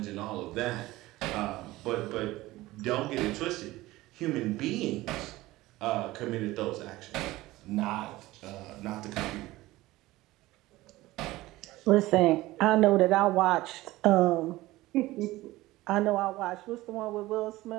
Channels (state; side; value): quieter; left; 18.2 dB